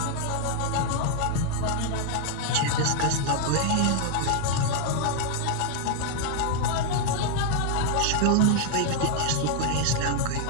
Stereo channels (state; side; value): different; both; correlation 0.00